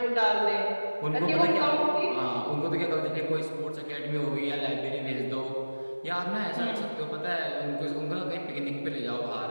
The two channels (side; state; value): both; inverted; correlation -1.00